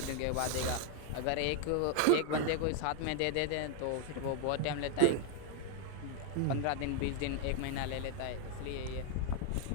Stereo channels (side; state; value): both; different; correlation 0.00